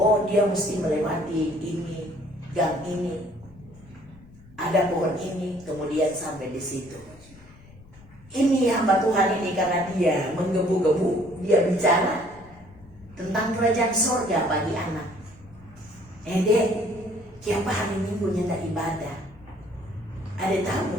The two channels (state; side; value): noise; left; rumble, 23 dB below the sound